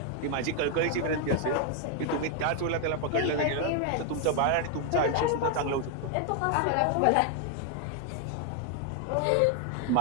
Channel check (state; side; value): different; both; correlation 0.00